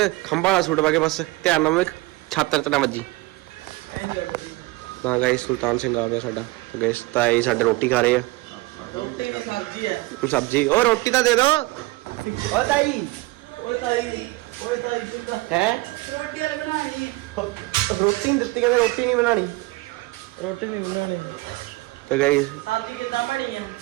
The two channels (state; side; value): quieter; left; 21.3 dB